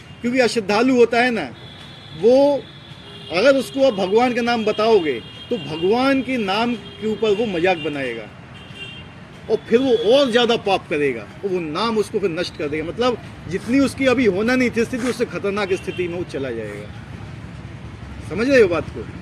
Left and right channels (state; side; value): identical; both; correlation 1.00